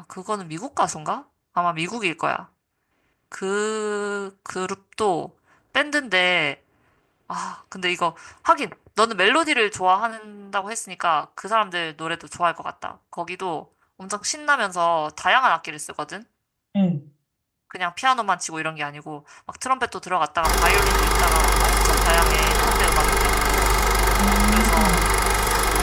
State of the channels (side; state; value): both; identical; correlation 1.00